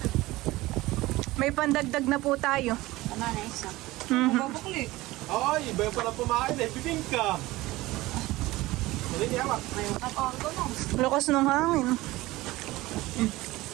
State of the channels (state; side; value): quieter; left; 18.9 dB